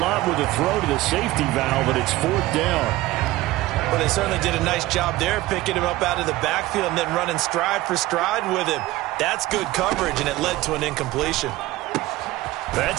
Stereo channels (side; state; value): left; quieter; 17.7 dB